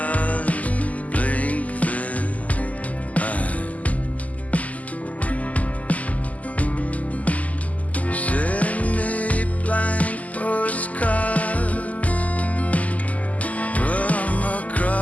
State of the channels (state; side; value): late; right; 0.074 ms